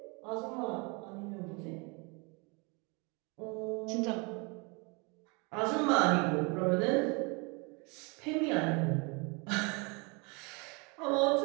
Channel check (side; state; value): left; quieter; 30.4 dB